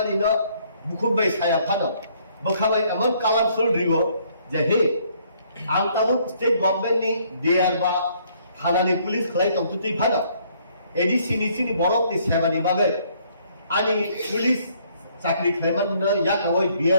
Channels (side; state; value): both; inverted; correlation -0.65